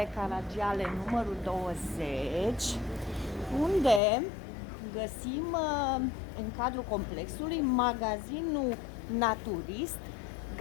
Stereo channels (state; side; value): drops out; right; at 4.0 s